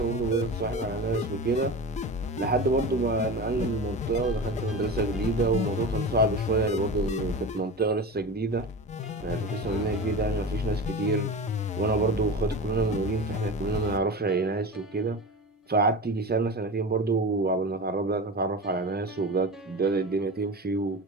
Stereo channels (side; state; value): both; normal; correlation 0.29